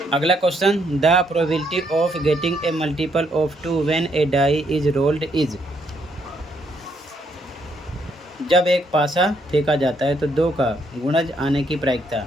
अगला question, the probability of getting a multiple of 2 when a die is rolled is. जब एक पासा फेंका जाता है तो 2 का गुणज आने की प्रायिकता।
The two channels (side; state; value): both; normal; correlation 0.73